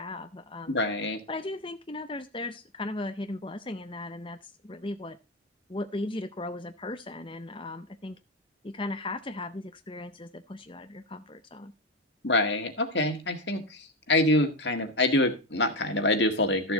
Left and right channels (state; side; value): normal; both; correlation 0.12